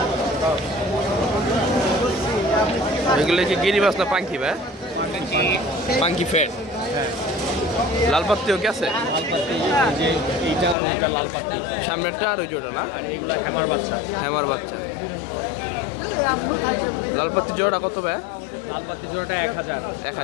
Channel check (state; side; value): drops out; right; at 10.8 s